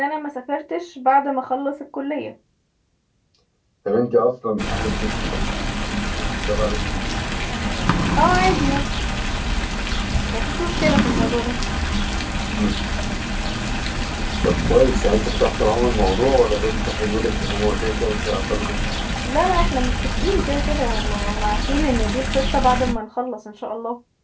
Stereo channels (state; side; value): identical; both; correlation 1.00